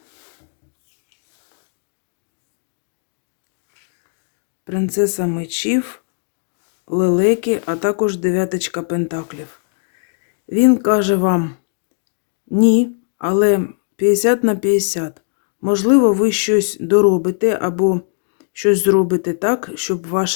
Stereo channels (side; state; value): right; silent; digital silence